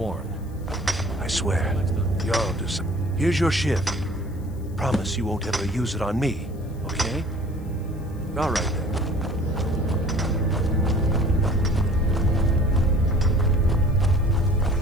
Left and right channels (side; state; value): left; noise; hiss, 28 dB below the sound